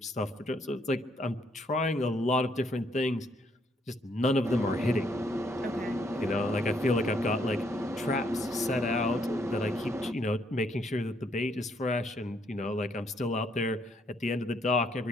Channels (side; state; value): both; normal; correlation 0.71